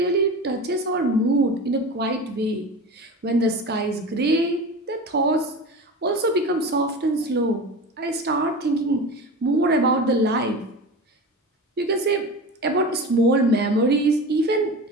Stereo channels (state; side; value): normal; both; correlation 0.30